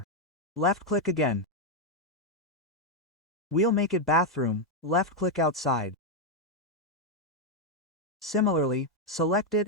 Left click again. We'll make it bathroom, left click outside. Similarly, select it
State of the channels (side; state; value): both; normal; correlation 0.01